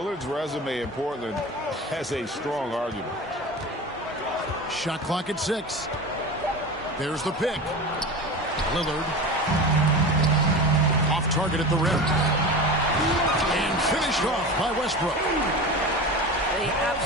resume in Portland has a strong argument. Shot clock at 6. There's the pick. Lillard. Off target at the rim. And finished off by Westbrook. The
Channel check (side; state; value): both; normal; correlation 0.29